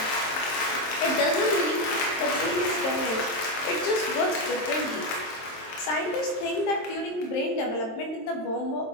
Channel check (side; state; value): right; late; 23 ms